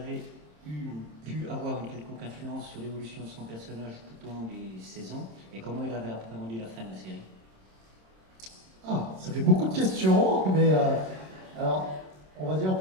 pu avoir une quelconque influence sur l'évolution de son personnage tout au long des saisons, et comment elle avait appréhendé la fin de la série. Ah, ça fait beaucoup de questions, mais alors, on va dire,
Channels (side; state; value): left; late; 26 ms